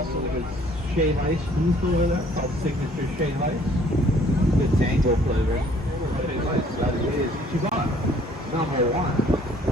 his Shea Ice booth over there, called Signature Shea Ice. The tango flavor. Shea Ice, that is Ichiban, number one.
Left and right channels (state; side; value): normal; both; correlation 0.59